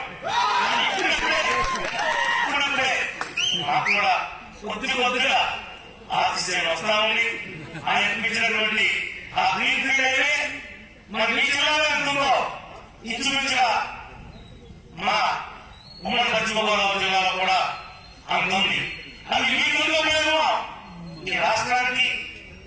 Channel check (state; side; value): identical; both; correlation 1.00